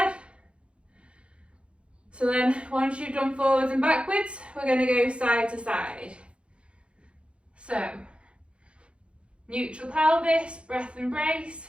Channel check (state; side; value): late; left; 0.059 ms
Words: So then once you've done forwards and backwards, we're going to go side to side. So, neutral pelvis, breath